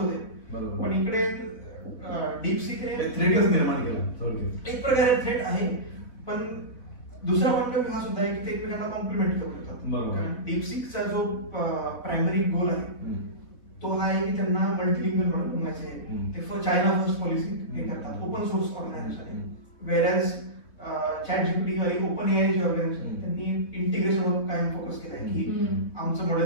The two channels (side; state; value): right; late; 3.9 ms